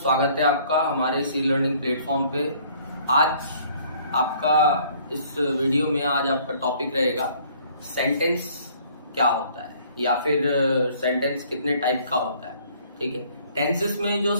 है आपका हमारे सी लर्निंग प्लेटफॉर्म पे। आज आपका इस वीडियो में आज आपका टॉपिक रहेगा सेंटेंस क्या होता है या फिर सेंटेंस कितने टाइप का होता है। ठीक है, टेंसेस में जो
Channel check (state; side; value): inverted; both; correlation -0.58